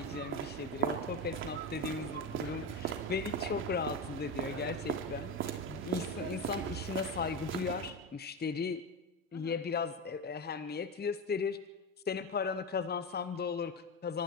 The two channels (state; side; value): normal; both; correlation 0.18